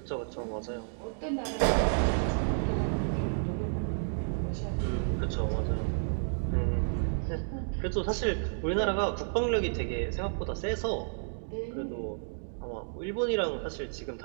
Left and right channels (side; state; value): left; silent; digital silence